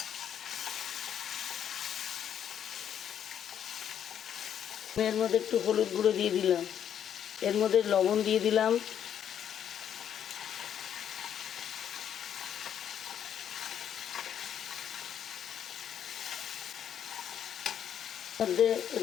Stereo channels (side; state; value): right; quieter; 9.3 dB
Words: এর মধ্যে একটু হলুদ গুঁড়ো দিয়ে দিলাম, এর মধ্যে লবণ দিয়ে দিলাম, মধ্যে